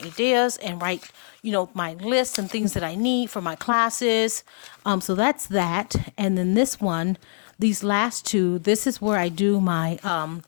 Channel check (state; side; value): silent; right; digital silence